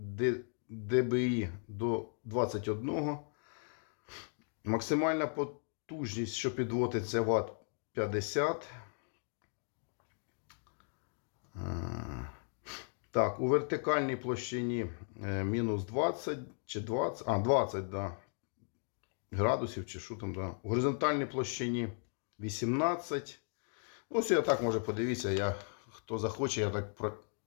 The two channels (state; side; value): silent; right; 54 dB below the other